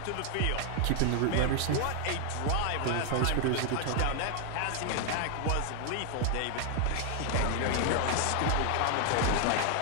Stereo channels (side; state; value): both; different; correlation 0.00